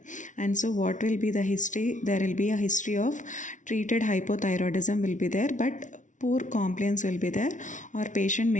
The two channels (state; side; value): late; right; 0.37 ms